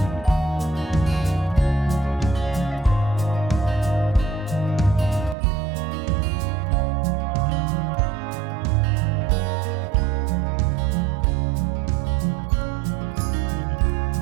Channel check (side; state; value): left; drops out; at 5.4 s